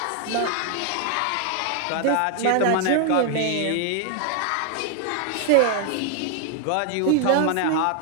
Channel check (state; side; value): different; both; correlation 0.00